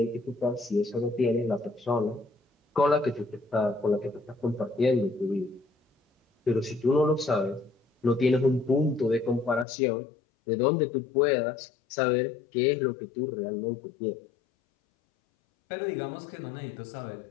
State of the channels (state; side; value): drops out; right; at 9.7 s